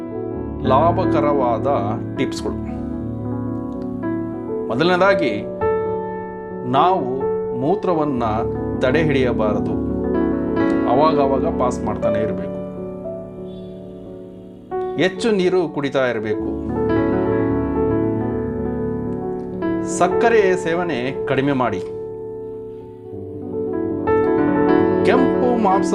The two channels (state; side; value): identical; both; correlation 1.00